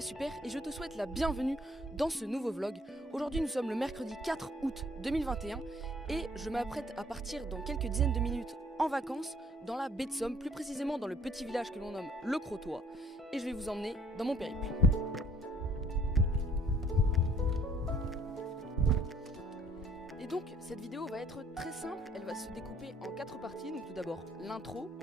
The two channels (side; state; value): both; normal; correlation 0.61